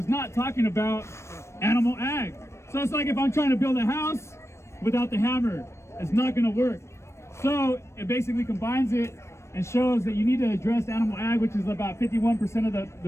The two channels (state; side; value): late; right; 0.13 ms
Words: not talking about animal ag. So it's like if I'm trying to build a house without the hammer, it's not going to work. So it basically combines it and shows that you need to address animal ag, which is about 51% of